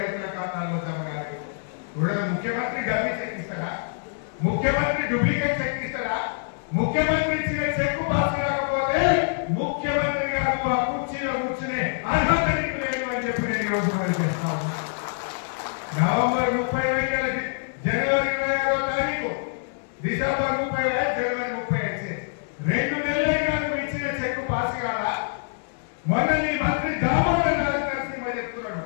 రైతుల ఖాతాలో జమ కాలేదు. ముఖ్యమంత్రి డబ్బి చెక్ ఇస్తారా? ముఖ్యమంత్రి డూప్లికేట్ చెక్ ఇస్తారా? ముఖ్యమంత్రి ఇచ్చిన చెక్ పాస్ కాకపోతే ముఖ్యమంత్రి గారు ఆ కుర్చీలో కూర్చునే అర్హత నీకు లేదు అని చెప్పి నేను ఈరోజు మనం చేస్తాను. నవంబర్ 30 జనవరి 26వ తారీఖు, డిసెంబర్ 30 జనవరి 30 2 నెలలైనా నువ్వు ఇచ్చిన చెక్ పాస్ కాదా? మొన్న నీ మంత్రి దామోదర్ రాజు నరసింహ చెప్తున్నాడు,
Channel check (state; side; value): silent; right; 62 dB below the other